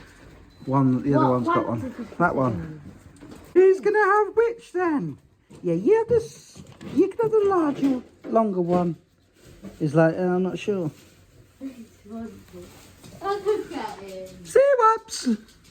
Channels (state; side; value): identical; both; correlation 1.00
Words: the other one's got one. That one. Who's going to have which then? Yeah, you have this. You can have the larger, longer one. He's like, I'm not sure. Oh, look at him. See whoops.